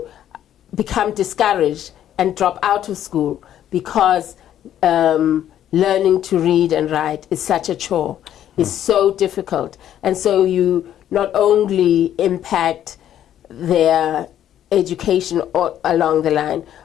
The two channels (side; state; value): right; quieter; 11.0 dB